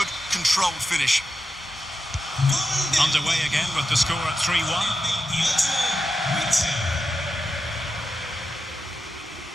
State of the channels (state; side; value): normal; both; correlation 0.89